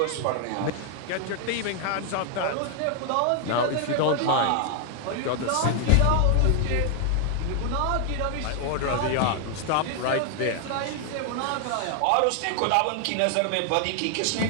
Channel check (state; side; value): different; both; correlation 0.00